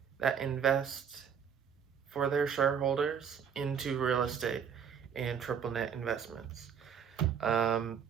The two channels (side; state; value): left; quieter; 7.5 dB